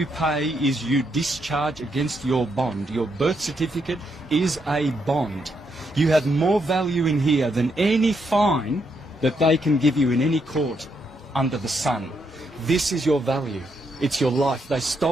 pay is you discharge against your bond. Your birth certificate is a bond. You have more value in here than any fine that they can give you in any court under the sun. This is your value. It's your life. They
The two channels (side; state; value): both; normal; correlation 0.78